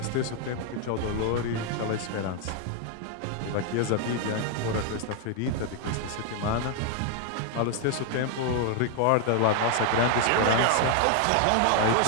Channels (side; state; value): both; different; correlation 0.00